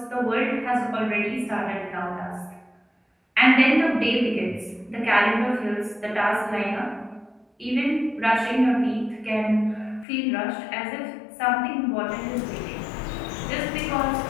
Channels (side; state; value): right; drops out; at 10.1 s